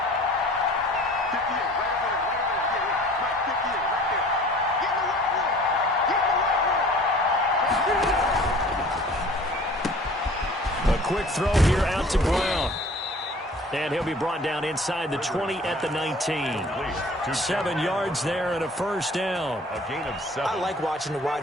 Quick throw here out to Brown. And he'll be brought down inside the 20 at the 19. 7 yards there and a 1st down. A gain of 7. I like watching the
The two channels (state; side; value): normal; both; correlation 0.48